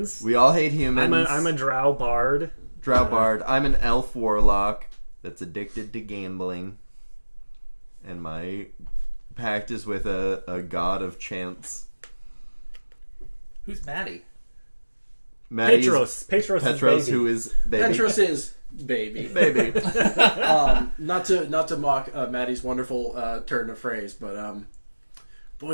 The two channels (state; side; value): inverted; both; correlation -1.00